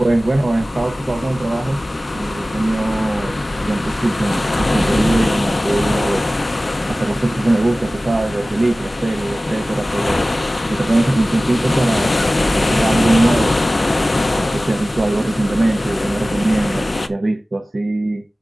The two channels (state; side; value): normal; both; correlation 0.97